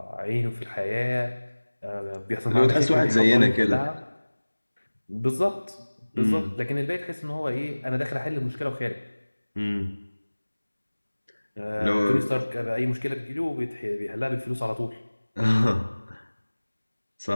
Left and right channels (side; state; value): both; inverted; correlation -1.00